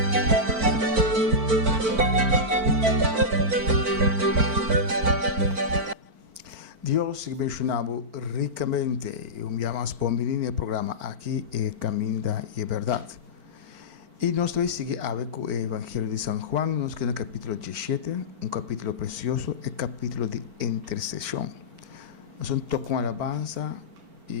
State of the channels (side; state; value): left; late; 4.5 ms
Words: Deus te abençoe ricamente. Eu me chamo Spombini no programa aqui é Caminho da Verdade. E nós vamos seguir com o Evangelho de São Juan, nós que no capítulo 17, capítulo precioso, é capítulo de intercessão. Nós vamos tocar uma alabanza